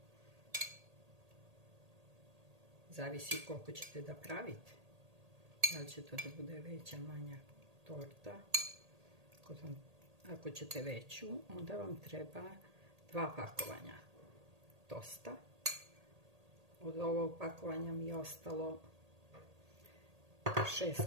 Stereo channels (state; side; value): late; left; 1.8 ms